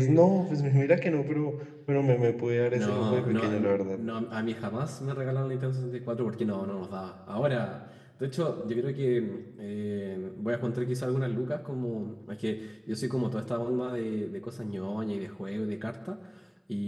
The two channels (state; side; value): identical; both; correlation 1.00